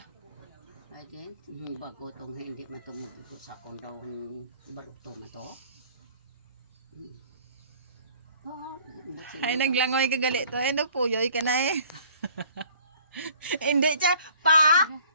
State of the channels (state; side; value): inverted; both; correlation -0.54